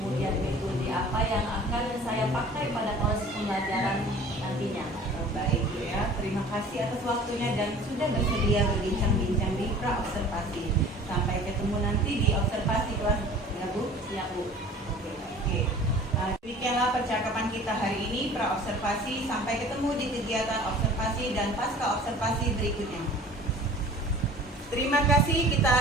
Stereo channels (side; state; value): both; normal; correlation 0.45